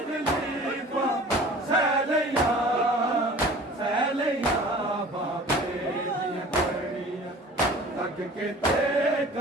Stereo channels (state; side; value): normal; both; correlation 0.44